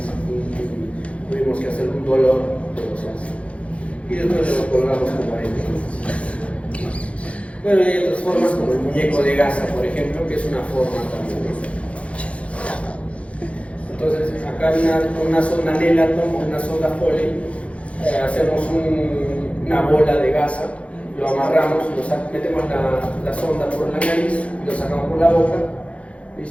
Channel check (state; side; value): late; right; 0.063 ms